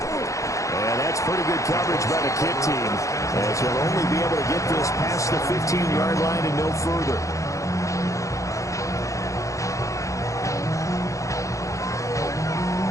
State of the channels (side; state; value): right; late; 0.15 ms